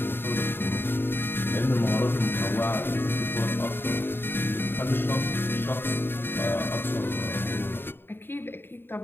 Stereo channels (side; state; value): right; late; 0.10 ms